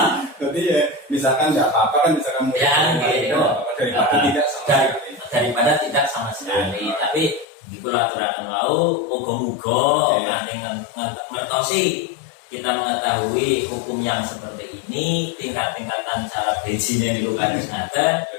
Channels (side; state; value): right; drops out; at 7.5 s